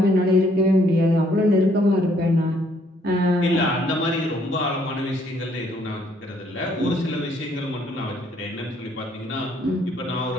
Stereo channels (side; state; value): both; normal; correlation 0.66